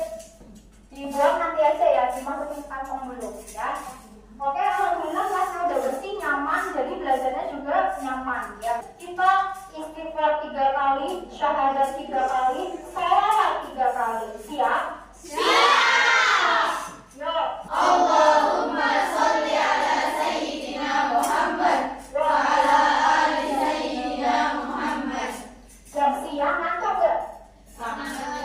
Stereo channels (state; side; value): identical; both; correlation 1.00